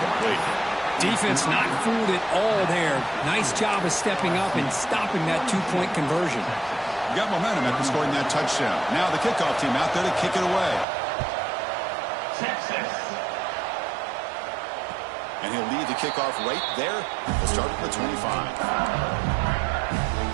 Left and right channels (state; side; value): drops out; left; at 10.9 s